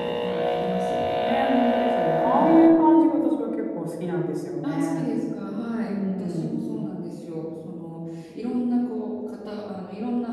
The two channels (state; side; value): identical; both; correlation 1.00